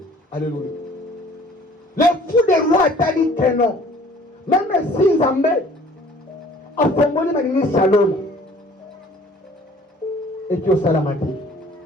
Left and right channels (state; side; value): normal; both; correlation 0.53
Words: Alléluia. Le fou de roi t'a dit que non. Même si Zambé a formé ma ligne salon. Et tu as salamati.